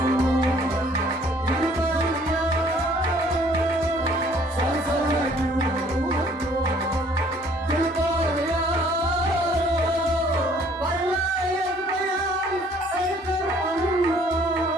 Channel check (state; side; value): normal; both; correlation 0.59